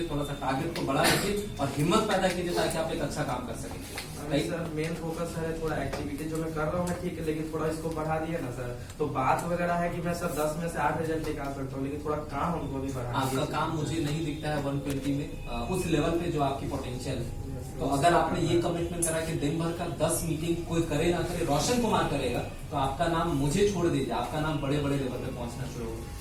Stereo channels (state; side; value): identical; both; correlation 1.00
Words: थोड़ा सा टारगेट को बढ़ा लीजिए और हिम्मत पैदा कीजिए ताकि आप एक अच्छा काम कर सकें। सर मेन फोकस है थोड़ा एक्टिविटी जो मैं कर रहा हूँ ठीक है, लेकिन थोड़ा इसको बढ़ा दिया ना सर, तो बात वगैरह है कि मैं सर 10 में से 8 रिजल्ट निकाल सकता हूँ, लेकिन थोड़ा काम हमको भी बढ़ा। आपका काम मुझे नहीं दिखता है 120 में उस लेवल पे जो आपकी पोटेंशियल है। तो अगर आपने ये कमिटमेंट करा कि दिन भर का 10 मीटिंग कोई करे ना करे रोशन कुमार करेगा, तो आपका नाम मुझे छोड़ दीजिए, आपका नाम बड़े बड़े लेवल पे पहुंचना शुरू